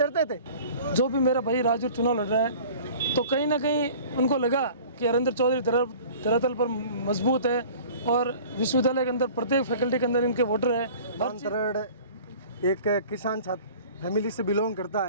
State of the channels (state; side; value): inverted; both; correlation -0.45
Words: थे। जो भी मेरा भाई राजू चुनाव लड़ रहा है तो कहीं ना कहीं उनको लगा कि हरेंद्र चौधरी धरातल पर मजबूत है और विश्वविद्यालय के अंदर प्रत्येक फैकल्टी के अंदर इनके वोटर है। अंतरण एक किसान छात्र फैमिली से बिलोंग करता